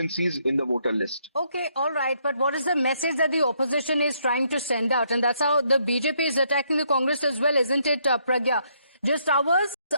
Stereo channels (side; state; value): both; inverted; correlation -0.72